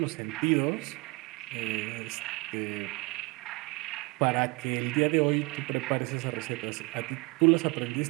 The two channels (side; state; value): left; quieter; 26.1 dB